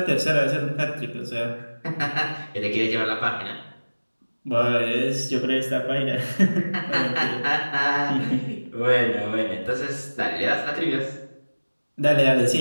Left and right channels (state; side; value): inverted; both; correlation -1.00